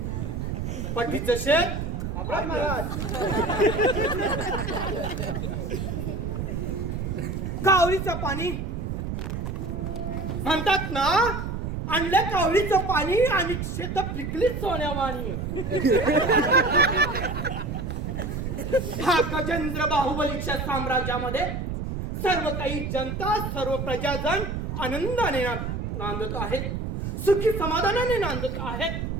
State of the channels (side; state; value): right; noise; rumble, 3 dB below the sound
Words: पट्टीचं शेत आपला महाराज. कावळीचं पाणी म्हणतात ना, आणलं कावळीचं पाणी आणि शेत पिकलीच सोन्यावाणी. हा गजेंद्र बाहुबलीच्या साम्राज्यामध्ये सर्व काही जनता, सर्व प्रजाजन आनंदाने नांदत आहेत, सुखी समाधानाने नांदत आहेत.